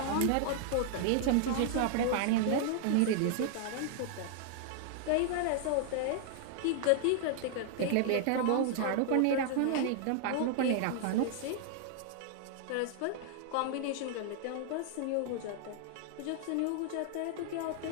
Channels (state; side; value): different; both; correlation 0.00